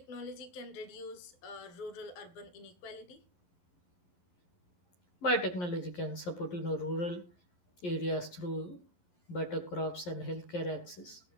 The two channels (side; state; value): right; late; 11 ms